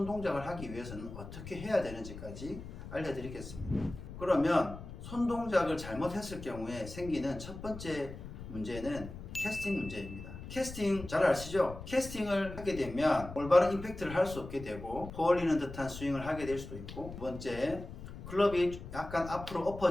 동작을 하기 위해서는 어떻게 해야 되는지까지 알려드리겠습니다. 그러면 손 동작을 잘못했을 경우에 생기는 첫 번째 문제는 캐스팅 문제입니다. 캐스팅 잘 아시죠? 캐스팅을 하게 되면 올바른 임팩트를 할 수 없게 되고 퍼올리는 듯한 스윙을 하게 될 수도 있고, 두 번째, 클럽이 약간 앞으로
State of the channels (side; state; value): left; noise; rumble, 11 dB below the sound